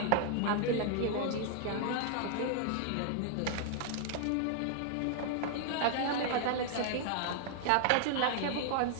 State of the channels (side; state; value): both; different; correlation 0.00